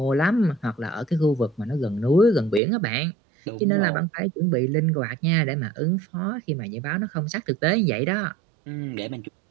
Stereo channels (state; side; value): drops out; left; at 2.6 s